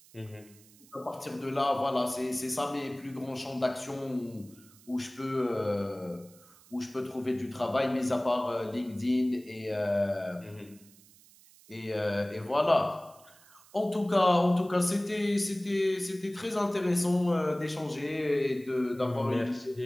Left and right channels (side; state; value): right; noise; hiss, 25 dB below the sound